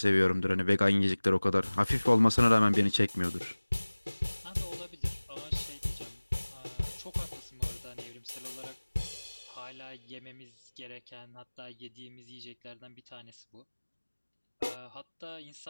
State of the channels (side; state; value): both; inverted; correlation -1.00